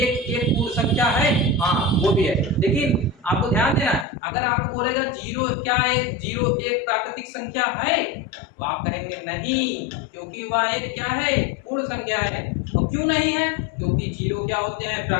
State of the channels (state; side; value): drops out; right; at 4.0 s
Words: 1 पूर्ण संख्या है? हाँ वो भी है। लेकिन आपको ध्यान देना है, अगर आपको बोलेगा 0 क्या है, 0 1 प्राकृतिक संख्या है तो आप कहेंगे नहीं, क्योंकि वह एक क्या है? पूर्ण संख्या है। और क्यों नहीं है? क्योंकि 0 क्या होते हैं?